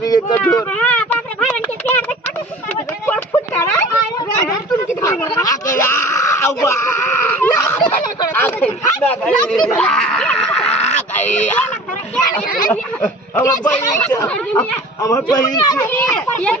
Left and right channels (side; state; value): both; normal; correlation 0.42